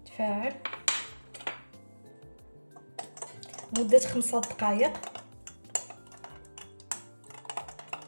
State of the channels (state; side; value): inverted; both; correlation -1.00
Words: تفاعل مده 5 دقائق.